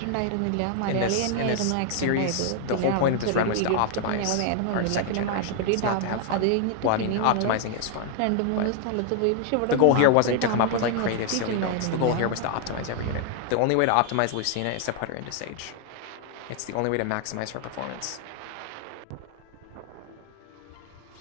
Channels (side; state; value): both; different; correlation 0.00